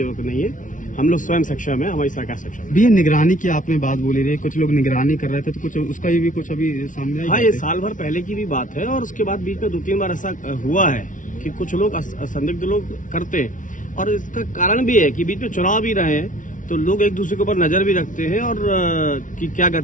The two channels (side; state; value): right; late; 0.38 ms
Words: नहीं है। हम लोग स्वयं सक्षम है, हमारी सरकार सक्षम है। भैया, निगरानी की आपने बात बोली रही, कुछ लोग निगरानी कर रहे थे, तो कुछ उसका भी कुछ अभी सामने आया? हाँ, ये साल भर पहले की भी बात है और उसके बाद बीच में 2-3 बार ऐसा हुआ है कि कुछ लोग संदिग्ध लोग करते हैं। और इसका कारण भी है कि बीच में चुनाव भी रहे हैं, तो लोग एक दूसरे के ऊपर नजर भी रखते हैं और कि क्या